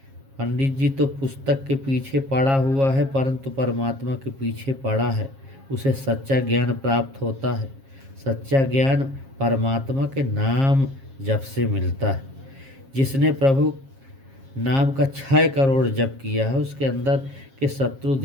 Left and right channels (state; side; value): late; left; 7.4 ms